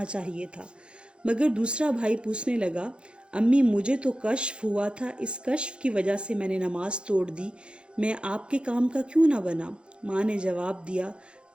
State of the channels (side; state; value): left; late; 0.056 ms